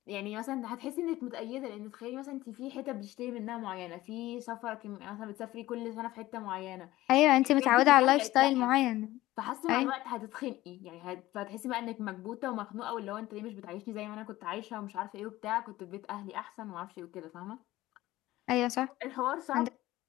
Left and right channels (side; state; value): right; quieter; 16.8 dB